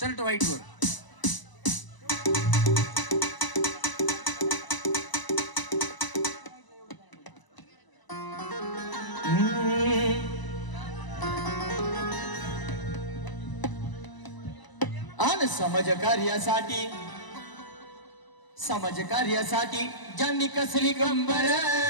व्हाईट वर आणि समाज कार्यासाठी ज्यांनी कसली कंबर.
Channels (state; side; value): late; right; 1.0 ms